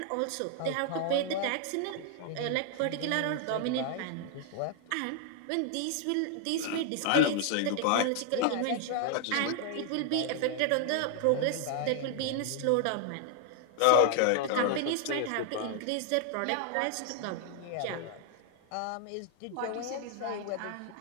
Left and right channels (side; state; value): both; different; correlation 0.00